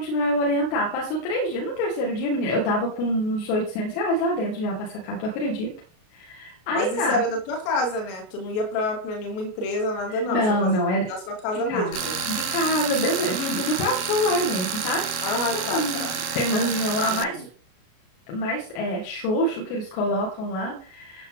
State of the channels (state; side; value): late; right; 32 ms